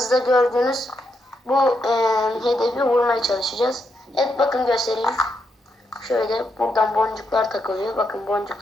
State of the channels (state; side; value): normal; both; correlation 0.81